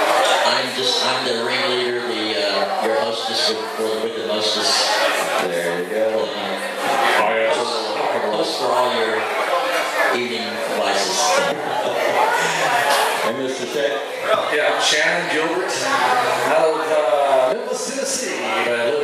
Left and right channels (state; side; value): identical; both; correlation 1.00